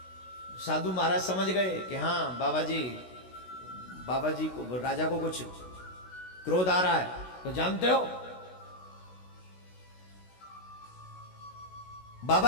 साधु महाराज समझ गए कि हाँ बाबा जी को, राजा को कुछ क्रोध आ रहा है। तो जानते हो,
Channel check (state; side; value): late; right; 16 ms